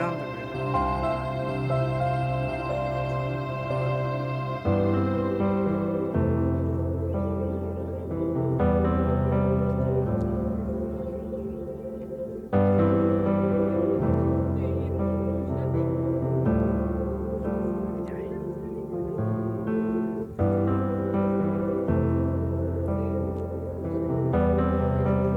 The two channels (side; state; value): both; identical; correlation 1.00